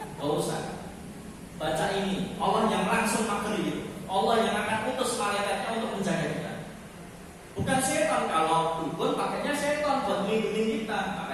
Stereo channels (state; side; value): identical; both; correlation 1.00